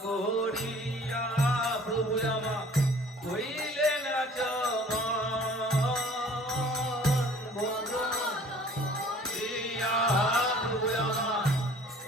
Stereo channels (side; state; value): both; normal; correlation 0.51